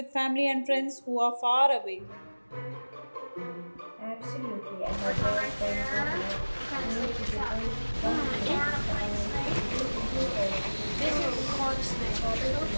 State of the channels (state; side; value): inverted; both; correlation -1.00